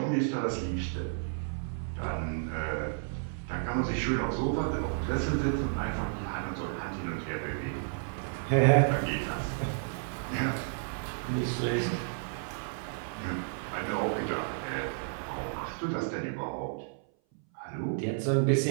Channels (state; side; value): silent; left; 57 dB below the other